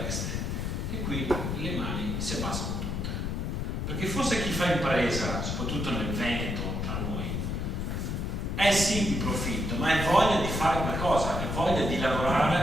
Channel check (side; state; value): left; noise; rumble, 2 dB below the sound